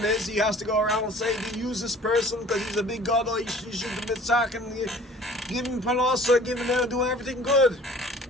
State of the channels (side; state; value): both; normal; correlation 0.49